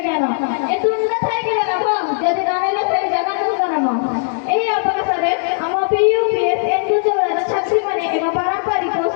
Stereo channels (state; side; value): silent; right; 67 dB below the other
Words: ज्ञान ए तुंड थाइकिबे लाभ जदि नाइले से जगन्नाथ नाम एही अवसरे हम पीयूपीएस एनजू चौरार छात्री माने एवं पारंपरिक